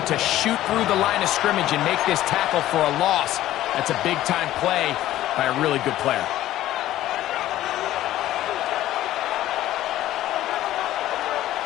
to shoot through the line of scrimmage and make this tackle for a loss. That's a big-time play by a really good player.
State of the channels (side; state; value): right; quieter; 14.1 dB